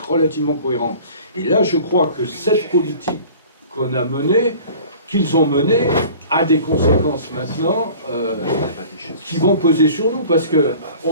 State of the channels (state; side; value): inverted; both; correlation -0.45